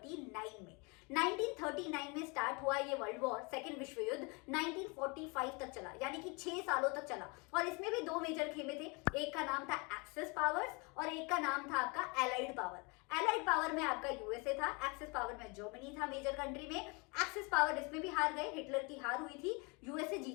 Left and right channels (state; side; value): quieter; right; 30.1 dB